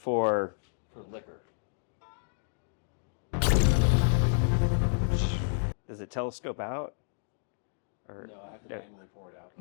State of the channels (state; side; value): silent; right; digital silence